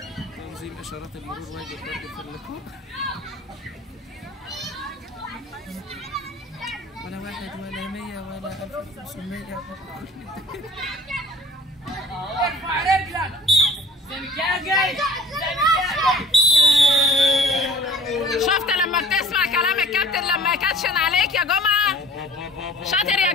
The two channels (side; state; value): both; normal; correlation 0.48